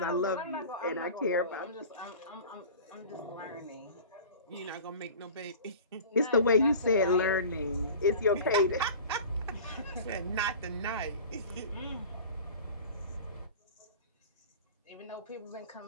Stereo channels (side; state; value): both; inverted; correlation -0.39